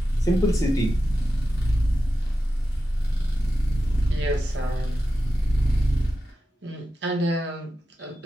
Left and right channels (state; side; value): normal; both; correlation 0.91